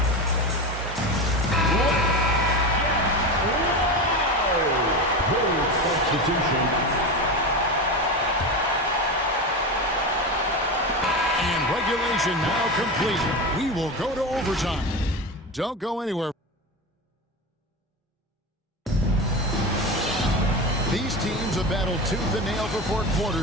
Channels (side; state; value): both; normal; correlation 0.22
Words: And regulation now complete. We will go to overtime. Don't go anywhere. These teams have battled tooth and nail for 4